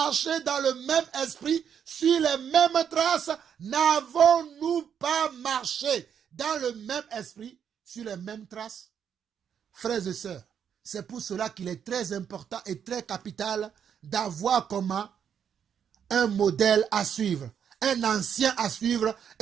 dans le même esprit, sur les mêmes traces? N'avons-nous pas marché dans le même esprit, sur les mêmes traces? Frères et sœurs, c'est pour cela qu'il est très important et très capital d'avoir comment un modèle à suivre, un ancien à suivre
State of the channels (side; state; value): left; quieter; 8.1 dB